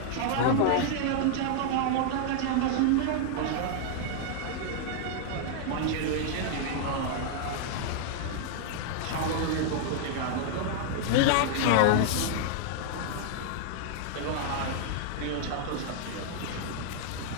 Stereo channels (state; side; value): different; both; correlation -0.01